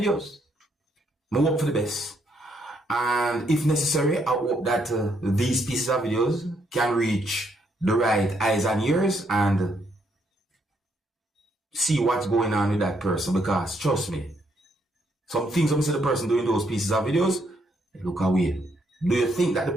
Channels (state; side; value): normal; both; correlation 0.74